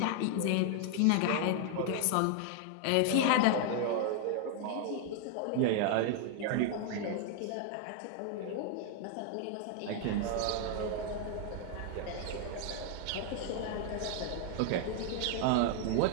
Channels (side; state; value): both; different; correlation 0.00